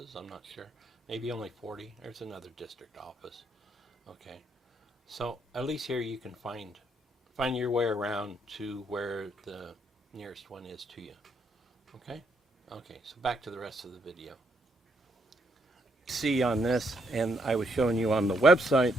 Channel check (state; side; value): normal; both; correlation 0.74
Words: I'm not sure. Maybe only 40. There's another district office. Okay. So at least here you can find your way around to where the nearest one is to you. Okay? Okay, so back to the rest of the video. See on this, and I was showing you on the website,